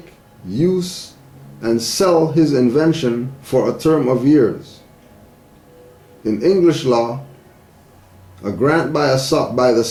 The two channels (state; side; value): identical; both; correlation 1.00